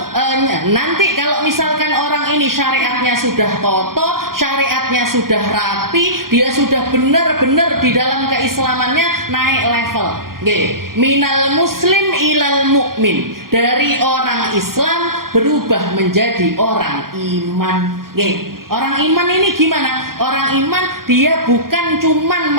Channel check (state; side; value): late; left; 0.92 ms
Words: nanti kalau misalkan orang ini syariatnya sudah kokoh, syariatnya sudah rapi, dia sudah benar-benar di dalam keislamannya naik level. Minal muslim ilal mu'min, dari orang Islam berubah menjadi orang iman. Orang iman ini gimana? Orang iman dia bukan cuman